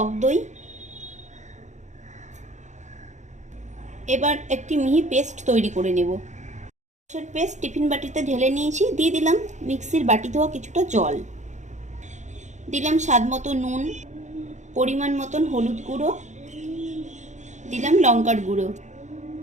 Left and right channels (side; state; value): left; late; 0.34 ms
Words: দই। এবার একটি মিহি পেস্ট তৈরি করে নেব। সর্ষের পেস্ট টিফিন বাটিতে ঢেলে নিয়েছি। দিয়ে দিলাম মিক্সির বাটি ধোয়া কিছুটা জল, দিলাম স্বাদ মতো নুন, পরিমাণ মতন হলুদ গুঁড়ো, দিলাম লঙ্কার গুঁড়ো,